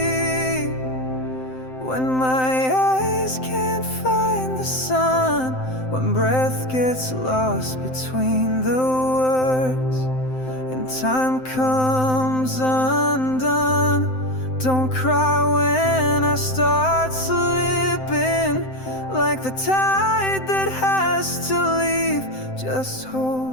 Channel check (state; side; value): late; right; 7.7 ms